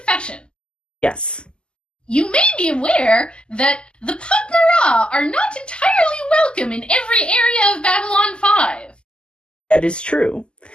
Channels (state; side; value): late; right; 0.049 ms